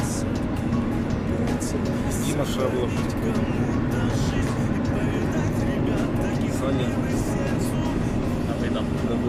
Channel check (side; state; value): both; identical; correlation 1.00